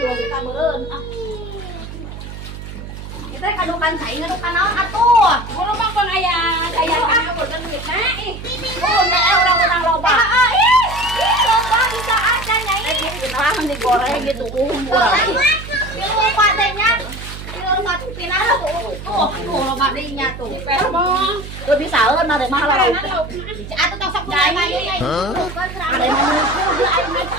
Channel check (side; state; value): right; noise; hum, 11 dB below the sound